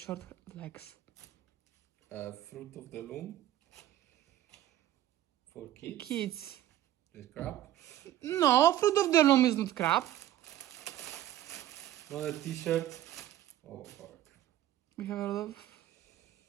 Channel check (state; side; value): quieter; left; 13.1 dB